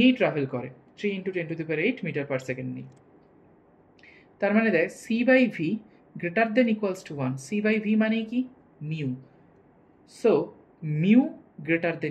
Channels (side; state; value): both; identical; correlation 1.00